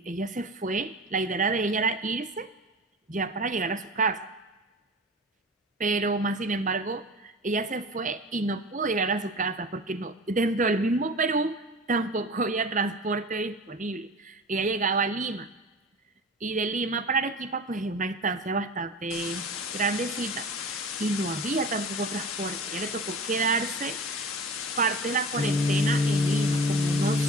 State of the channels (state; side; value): normal; both; correlation 0.35